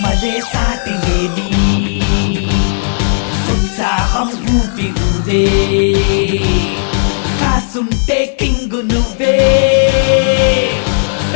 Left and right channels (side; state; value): right; silent; digital silence